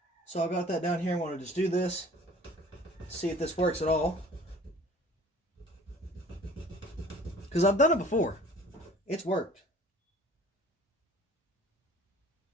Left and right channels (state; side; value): normal; both; correlation 0.49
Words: So I've got that down here. I want to just do this, see if this works at all. Because I've done it before. It's worked.